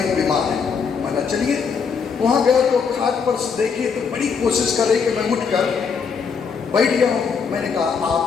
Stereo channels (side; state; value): right; quieter; 6.0 dB